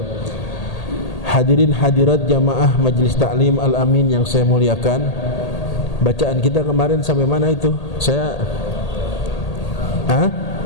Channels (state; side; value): late; right; 1.8 ms